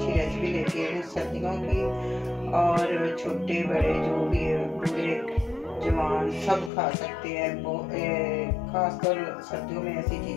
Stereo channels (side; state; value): right; drops out; at 6.7 s